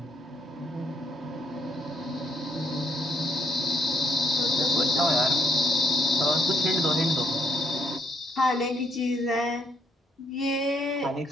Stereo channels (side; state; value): both; normal; correlation 0.72